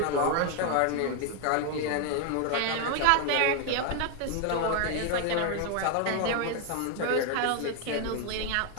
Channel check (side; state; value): both; different; correlation 0.01